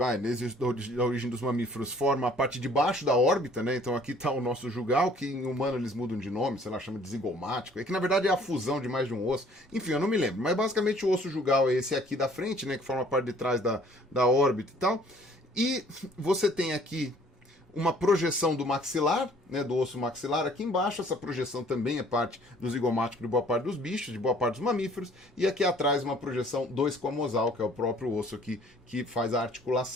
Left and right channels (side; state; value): both; normal; correlation 0.56